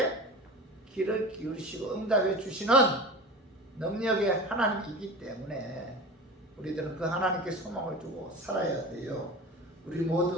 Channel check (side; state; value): both; normal; correlation 0.33